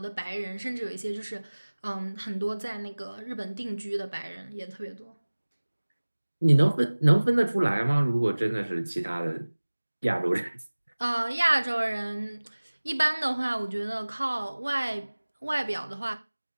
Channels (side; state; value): both; inverted; correlation -1.00